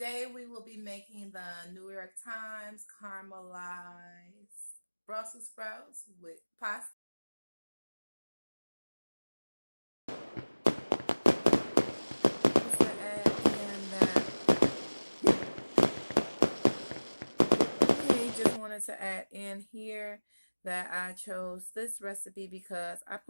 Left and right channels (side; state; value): both; inverted; correlation -1.00